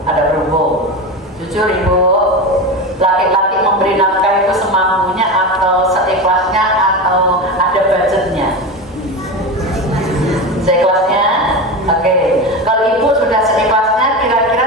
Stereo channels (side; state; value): both; normal; correlation 0.22